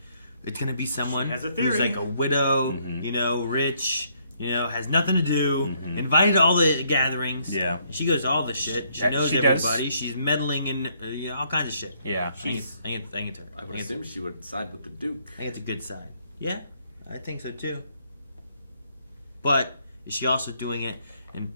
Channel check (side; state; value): both; inverted; correlation -0.70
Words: it's gonna be someone She has a who's theory. like a widow, Mm-hmm. you know, rich, you know, has nothing to do, invited to all the gatherings. Yeah. She goes to all the shit. She Yeah, knows she does. everybody. She's meddling in you know, all kinds of shit. Yeah. I think it's her. I would assume she would side with the Duke. I think it's a good side. Yeah, I think so too. But is she also doing it and